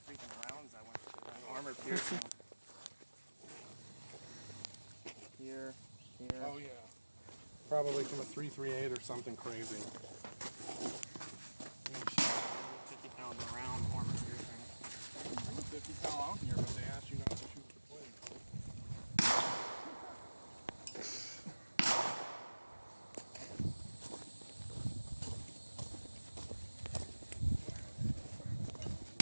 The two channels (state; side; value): inverted; both; correlation -1.00